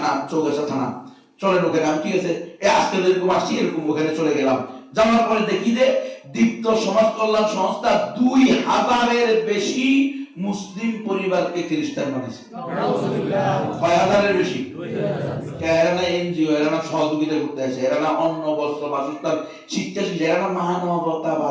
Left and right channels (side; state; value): both; identical; correlation 1.00